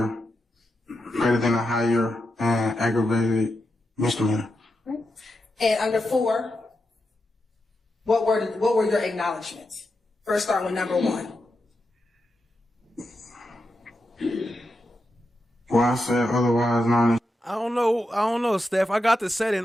and aggravated misdemeanor. And under 4, what were your acknowledgments? First, start with number 1. Well, I said otherwise known as. I don't know, Steph. I got the setting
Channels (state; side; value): normal; both; correlation 0.87